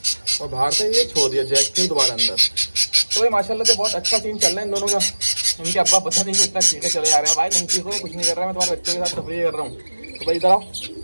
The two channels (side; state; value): both; inverted; correlation -1.00